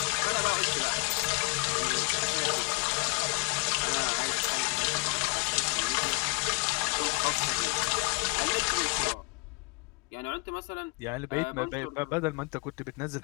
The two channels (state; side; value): quieter; right; 32.6 dB